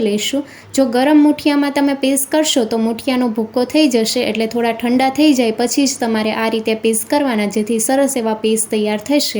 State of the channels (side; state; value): both; identical; correlation 1.00